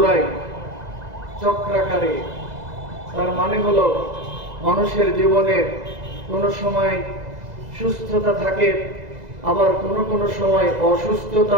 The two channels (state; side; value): late; left; 2.0 ms